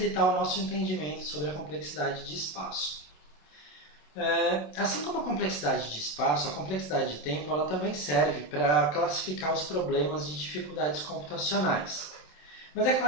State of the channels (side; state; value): right; late; 27 ms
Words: o nosso entendimento sobre a complexidade de espaço. Assim como a complexidade de espaço, a complexidade de tempo ela também serve para classificar os problemas de dificuldades computacionais. Mas é